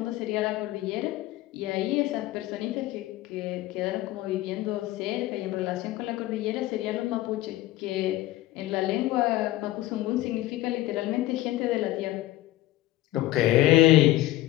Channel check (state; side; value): quieter; right; 16.3 dB